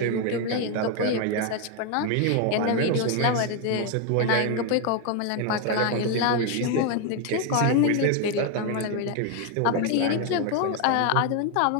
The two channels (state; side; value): different; both; correlation 0.01